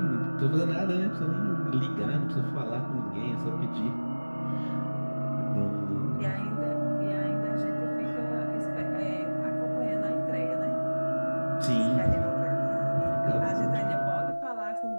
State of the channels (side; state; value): both; inverted; correlation -1.00